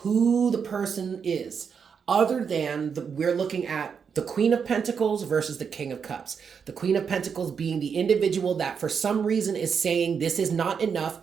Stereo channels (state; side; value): quieter; left; 6.5 dB